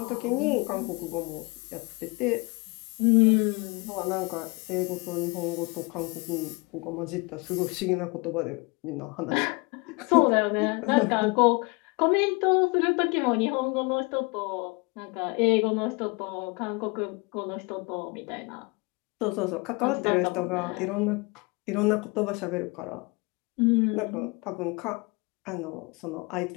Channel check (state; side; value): quieter; right; 28.1 dB